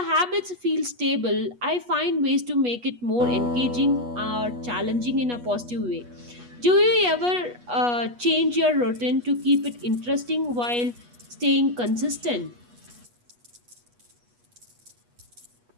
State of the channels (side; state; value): left; late; 8.3 ms